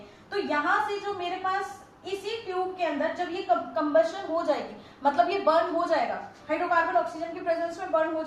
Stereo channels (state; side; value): identical; both; correlation 1.00